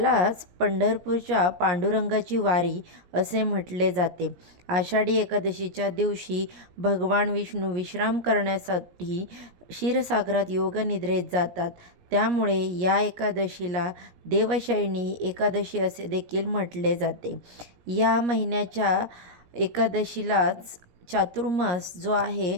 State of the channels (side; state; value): left; late; 17 ms